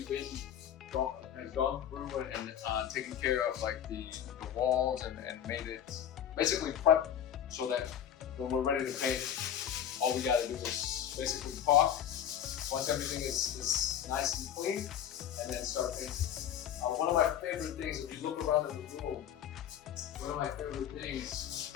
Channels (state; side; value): quieter; right; 9.7 dB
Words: gone through and taken care of like the walls and made it basically prep so that when we're ready to paint, all we gotta do is basically caulk. Once everything is nice and clean, and then start painting. One of my favorite things, if you look around in the room, one of my favorite things